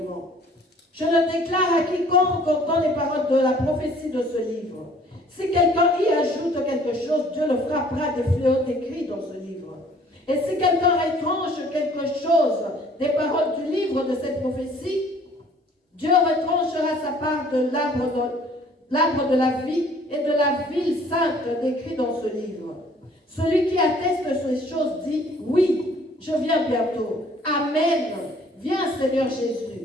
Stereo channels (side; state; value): both; normal; correlation 0.56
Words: Je le déclare à quiconque entend les paroles de la prophétie de ce livre. Si quelqu'un y ajoute quelque chose, Dieu le frappera des fléaux décrits dans ce livre. Et si quelqu'un retranche quelque chose des paroles du livre de cette prophétie, Dieu retranchera sa part de l'arbre de la vie et de la ville sainte décrit dans ce livre. Celui qui atteste ces choses dit, oui, je viens bientôt. Amen. Viens, Seigneur